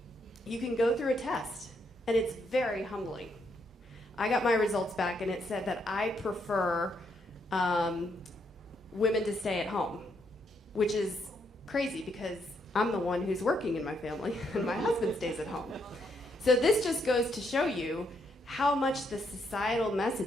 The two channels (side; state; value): both; normal; correlation 0.76